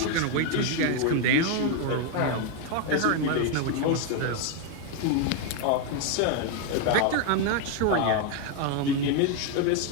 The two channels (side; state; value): both; different; correlation 0.01